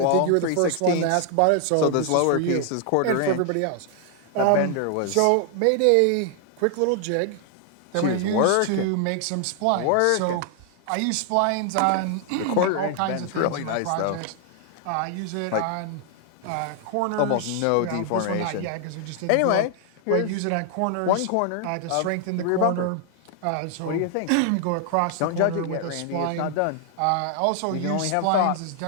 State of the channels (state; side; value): different; both; correlation 0.00